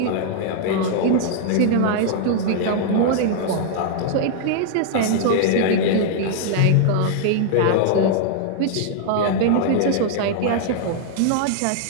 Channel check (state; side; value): different; both; correlation -0.01